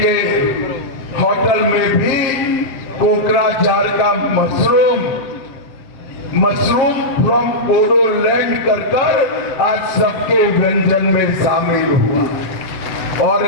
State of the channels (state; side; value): late; right; 7.4 ms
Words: होटल में भी कोकराझार का मशरूम फ्रॉम बोडोलैंड कर आज सबके व्यंजन में शामिल हुआ। और